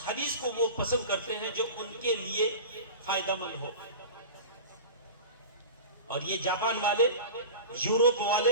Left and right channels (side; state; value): both; inverted; correlation -0.33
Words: حدیث کو وہ پسند کرتے ہیں جو ان کے لیے فائدہ مند ہو. اور یہ جاپان والے، یورپ والے،